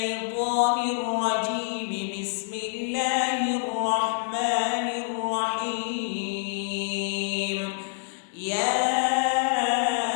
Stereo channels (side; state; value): right; silent; digital silence